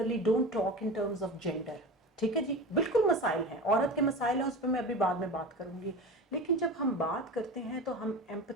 don't talk in terms of gender, ठीक है जी, बिल्कुल मसाइल हैं, औरत के मसाइल हैं, उस पर मैं अभी बाद में बात करूंगी। लेकिन जब हम बात करते हैं तो हम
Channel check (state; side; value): normal; both; correlation 0.31